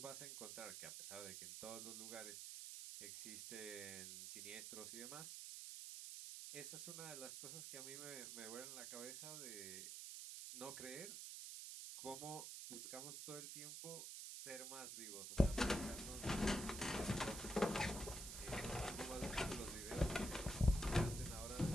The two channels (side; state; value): right; noise; hiss, 6 dB below the sound